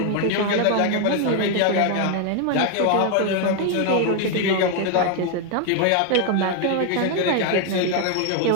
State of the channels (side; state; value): both; different; correlation 0.01